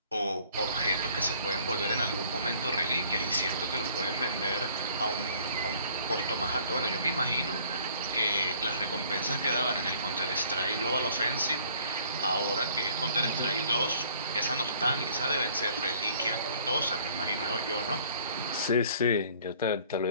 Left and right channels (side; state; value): both; inverted; correlation -0.56